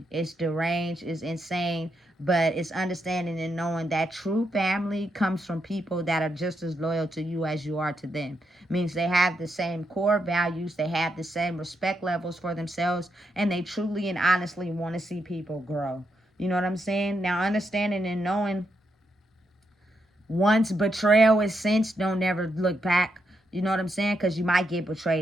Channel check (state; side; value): normal; both; correlation 0.81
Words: it's deranged, it's insane, but it's understanding and knowing that true family comes from people that are just as loyal to you as you are to them. Means they have the same core values, they have the same respect levels for themselves, and they truly and honestly want to see people grow. You know what I'm saying? Now, understanding and knowing once betrayal is cinched, don't never look back. You know what I'm saying? Because you might get